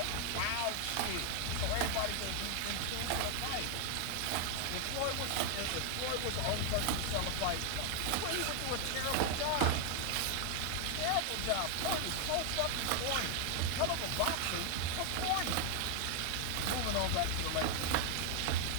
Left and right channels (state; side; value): different; both; correlation 0.00